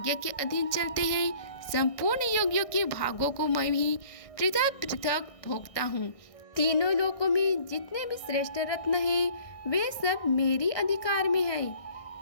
के अधीन चलते हैं। संपूर्ण योगियों के भागों को मैं भी पृथक पृथक भोगता हूँ। तीनों लोकों में जितने भी श्रेष्ठ रत्न हैं, वे सब मेरी अधिकार में है।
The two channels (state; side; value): late; right; 1.6 ms